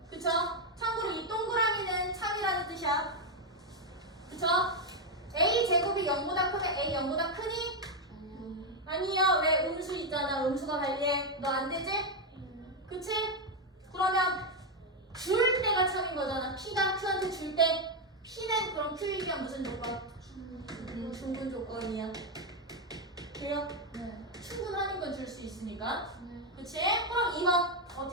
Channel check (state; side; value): normal; both; correlation 0.04